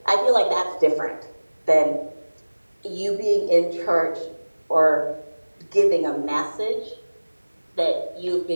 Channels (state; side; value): inverted; both; correlation -1.00